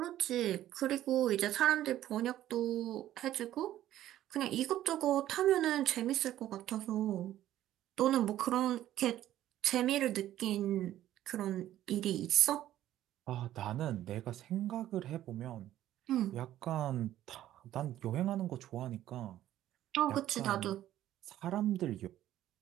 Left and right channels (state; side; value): quieter; left; 13.0 dB